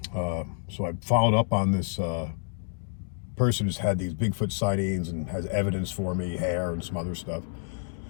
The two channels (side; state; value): right; silent; digital silence